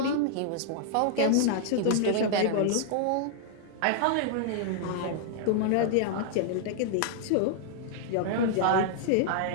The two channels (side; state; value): both; different; correlation -0.01